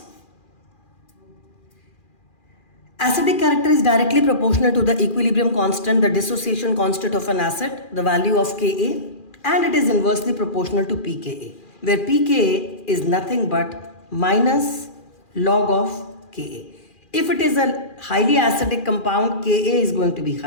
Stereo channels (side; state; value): right; late; 2.4 ms